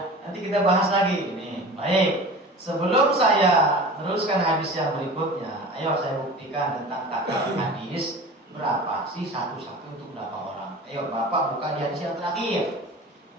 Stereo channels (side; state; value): both; normal; correlation 0.37